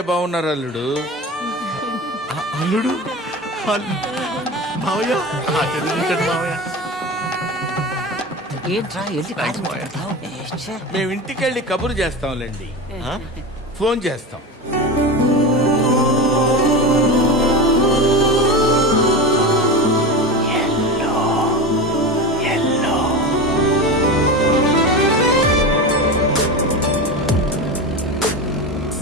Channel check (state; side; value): normal; both; correlation 0.25